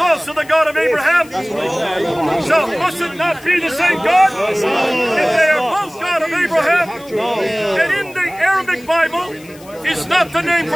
the God of Abraham? So must it not be the same God? If they are both God of Abraham, and in the Arabic Bible is not the name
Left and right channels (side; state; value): left; noise; hiss, 23 dB below the sound